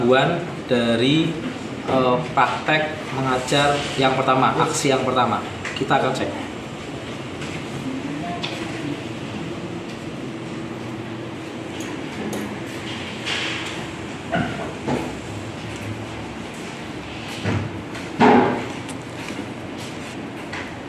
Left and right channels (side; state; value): both; identical; correlation 1.00